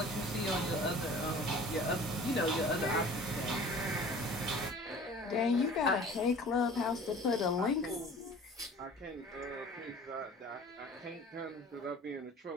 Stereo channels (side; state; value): both; normal; correlation 0.45